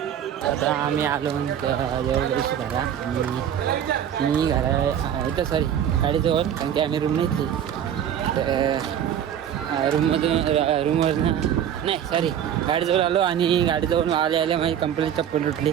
आता आम्ही आलो देऊळ शिकायला आणि मी घरा इथं सॉरी गाडीजवळ कारण की आम्ही रूम नाही तर रूमवर नाही सॉरी गाडीजवळ आलो आणि गाडीजवळ आले माझी कंपनी चप्पल उठली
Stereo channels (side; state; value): left; quieter; 9.6 dB